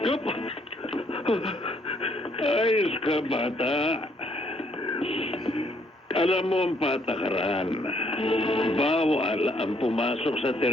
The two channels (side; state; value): both; normal; correlation 0.68